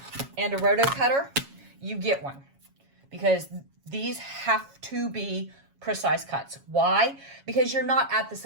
and a roto cutter, you get one, because these have to be precise cuts. Why? Because you're not at the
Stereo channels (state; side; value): late; left; 7.3 ms